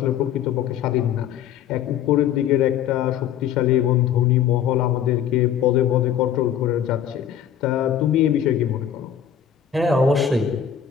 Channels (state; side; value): quieter; right; 9.2 dB